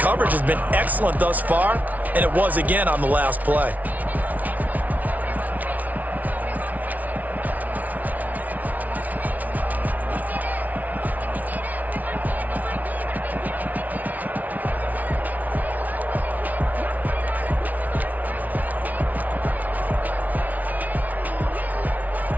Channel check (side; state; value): left; late; 0.074 ms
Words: has been excellent thus far, and it was again on the last play.